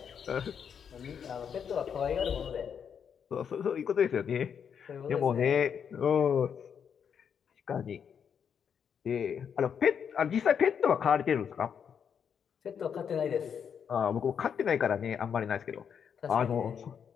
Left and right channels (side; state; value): right; quieter; 7.5 dB